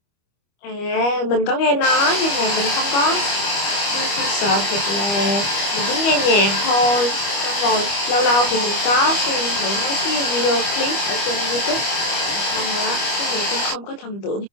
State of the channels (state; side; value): late; right; 25 ms